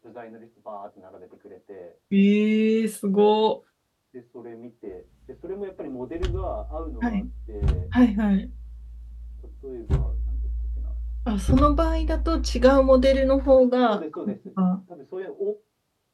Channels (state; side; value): identical; both; correlation 1.00